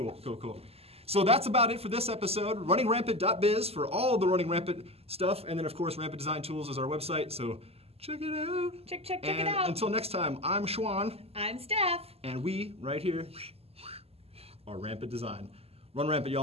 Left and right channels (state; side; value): late; left; 0.29 ms